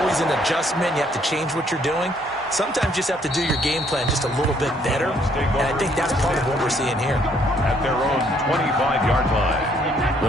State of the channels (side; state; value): both; normal; correlation 0.66